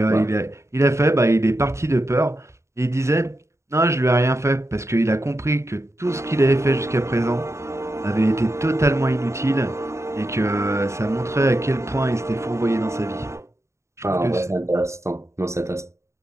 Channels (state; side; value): late; left; 0.14 ms